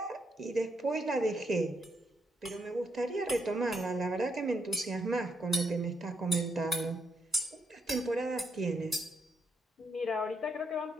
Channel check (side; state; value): both; normal; correlation 0.79